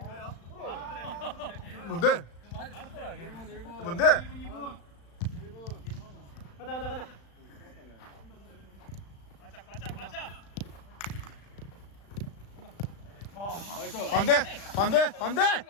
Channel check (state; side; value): late; right; 35 ms